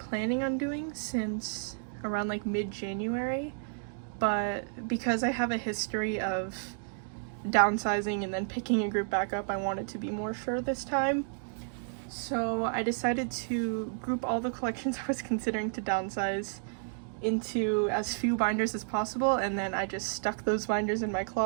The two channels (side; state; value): left; silent; digital silence